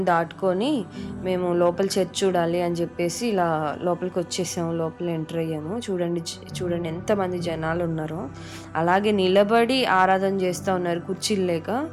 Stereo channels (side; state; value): both; identical; correlation 1.00